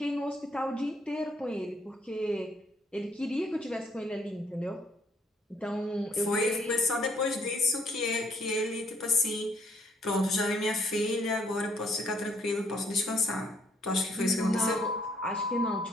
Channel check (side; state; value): both; normal; correlation 0.67